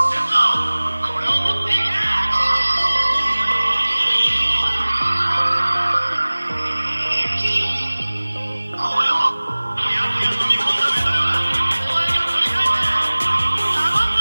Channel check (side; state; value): both; inverted; correlation -1.00